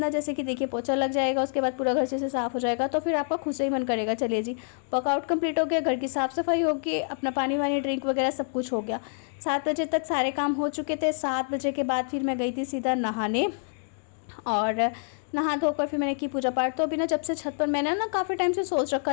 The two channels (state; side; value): silent; right; digital silence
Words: जैसे कि देखिए पोछा लग जाएगा, उसके बाद पूरा घर अच्छे से साफ़ हो जाएगा, तो फिर आपका खुद से ही मन करेगा चलिए जी वर्कआउट कंप्लीट हो गया, घर की साफ़ सफाई होगी, अपना पानी वानी ड्रिंक वगैरह सब कुछ हो गया। 7 बजे तक सारे काम हो चुके थे। 7 बजे के बाद फिर मैं गई थी सीधा नहाने, और नहा धोकर फिर मैंने की पूजा पाठ। तो अभी ना जब से छत पर, मैंने ना काफ़ी टाइम से सोच